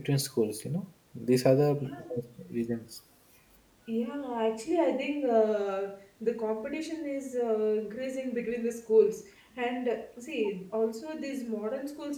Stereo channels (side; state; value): both; identical; correlation 1.00